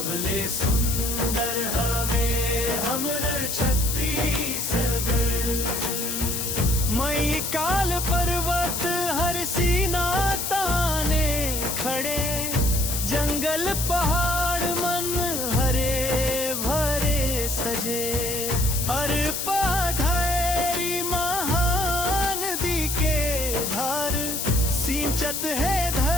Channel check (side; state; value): left; noise; hiss, 2 dB below the sound